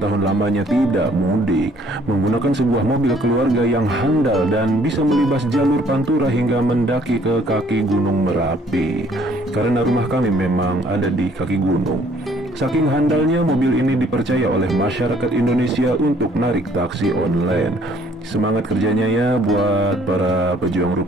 lamanya tidak mudik, menggunakan sebuah mobil keluarga yang handal dan bisa melibas jalur Pantura hingga mendaki ke kaki Gunung Merapi. Karena rumah kami memang ada di kaki gunung. Saking handalnya, mobil ini dipercaya oleh masyarakat Indonesia untuk narik taksi online. Semangat kerjanya ya buat para pejuang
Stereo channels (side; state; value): both; normal; correlation 0.61